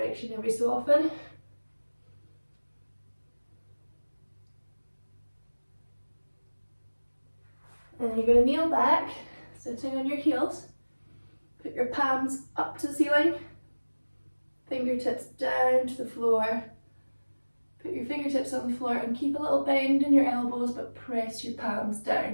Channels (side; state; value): both; inverted; correlation -1.00